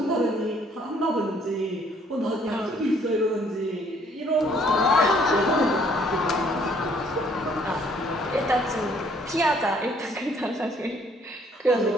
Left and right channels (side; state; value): both; normal; correlation 0.62